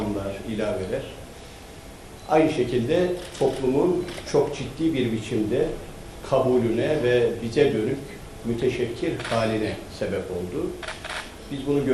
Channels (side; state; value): both; identical; correlation 1.00